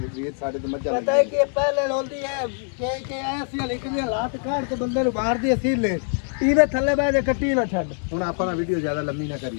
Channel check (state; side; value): silent; right; 56 dB below the other